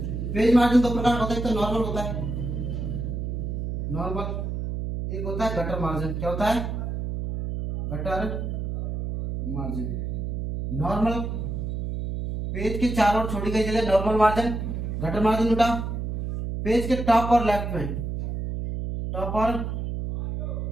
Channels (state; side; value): noise; right; hum, 3 dB below the sound